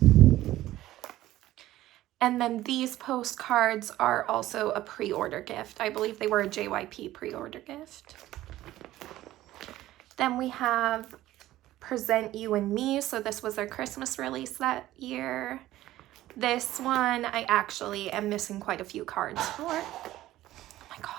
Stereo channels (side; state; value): left; quieter; 15.1 dB